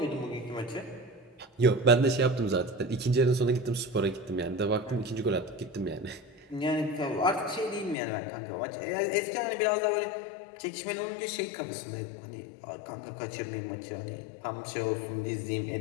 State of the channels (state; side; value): drops out; right; at 8.0 s